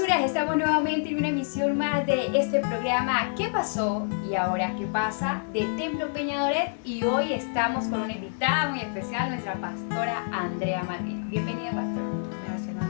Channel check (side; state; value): right; silent; 60 dB below the other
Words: estamos nuevamente en una emisión más de este programa ¿Qué pasó? Y ahora ¿qué pasa? De Templo Peñadoret, y hoy estamos con una invitada muy especial, nuestra pastora Andrea Malvino. Bienvenida, pastora. Gracias,